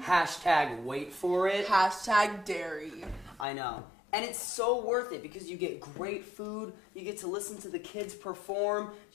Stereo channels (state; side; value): drops out; right; at 3.5 s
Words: Hashtag wait for it. Hashtag dairy. I know. And it's so worth it because you get great food, you get to listen to the kids perform,